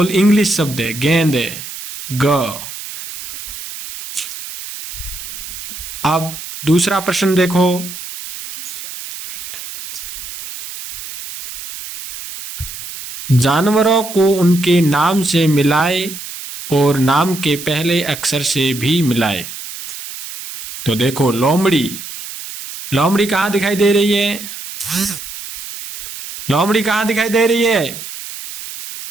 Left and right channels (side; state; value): right; noise; hiss, 11 dB below the sound